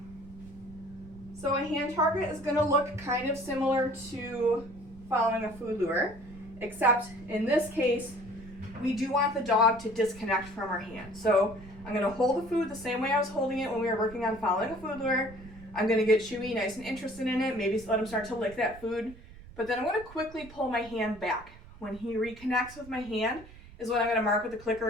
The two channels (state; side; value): noise; right; rumble, 19 dB below the sound